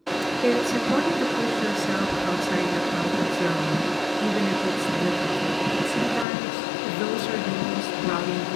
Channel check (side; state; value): right; drops out; at 6.2 s